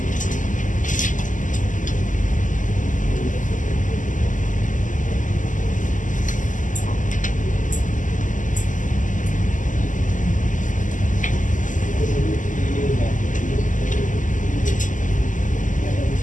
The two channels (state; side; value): late; right; 0.37 ms